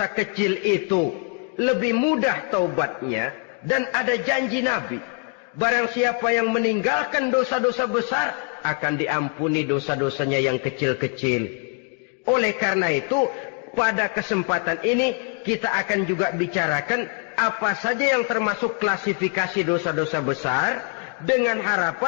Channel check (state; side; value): quieter; right; 35.1 dB